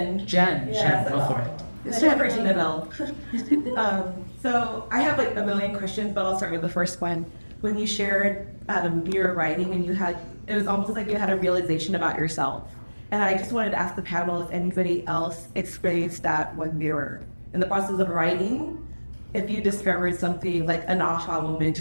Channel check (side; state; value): both; inverted; correlation -1.00